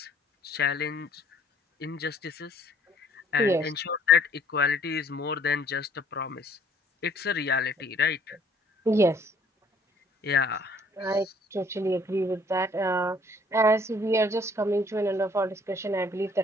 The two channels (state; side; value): normal; both; correlation 0.59